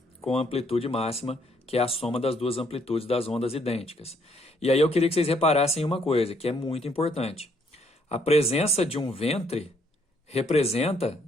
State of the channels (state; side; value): normal; both; correlation 0.69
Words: com amplitude máxima, que é a soma das duas amplitudes das ondas idênticas. E aí eu queria que vocês reparassem uma coisa, que é muito importante. A presença de um ventre representa,